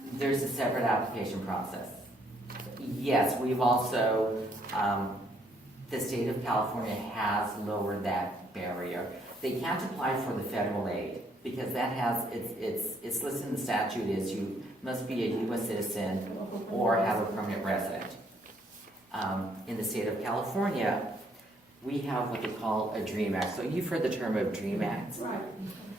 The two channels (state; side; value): normal; both; correlation 0.68